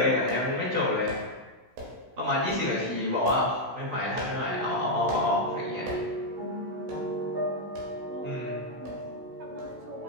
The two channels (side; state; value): left; late; 16 ms